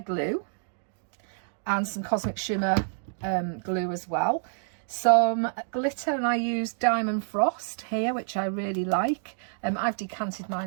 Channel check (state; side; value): silent; left; digital silence